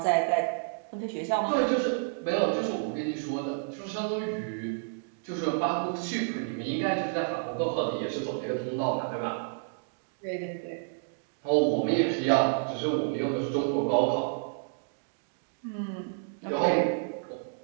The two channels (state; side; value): silent; left; digital silence